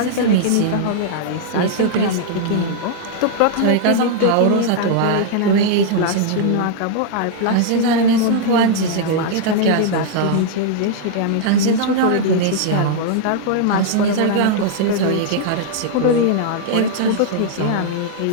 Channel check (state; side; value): different; both; correlation -0.01